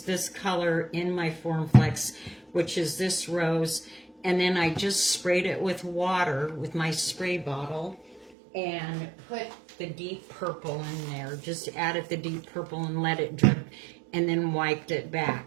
this color in my Formflex, which is this rose. And then I just sprayed it with water with my spray bottle and put the deep purple in there. Just added the deep purple and let it drip and then wiped it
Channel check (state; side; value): drops out; left; at 8.3 s